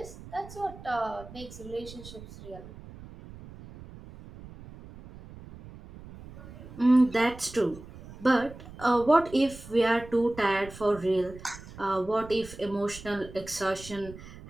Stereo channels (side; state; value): right; noise; rumble, 16 dB below the sound